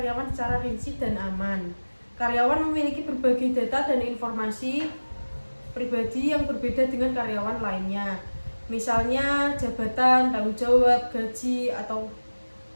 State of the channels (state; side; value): inverted; both; correlation -1.00